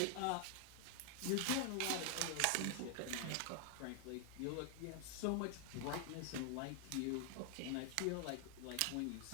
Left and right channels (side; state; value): both; different; correlation 0.00